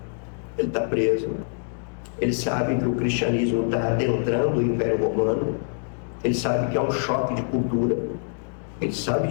Ele está preso. Ele sabe que o cristianismo está adentrando o Império Romano. Ele sabe que é um choque de cultura. Ele sabe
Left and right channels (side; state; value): right; silent; 62 dB below the other